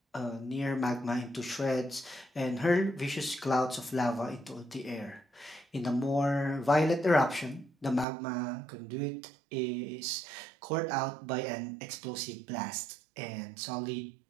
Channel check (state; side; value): drops out; left; at 8.1 s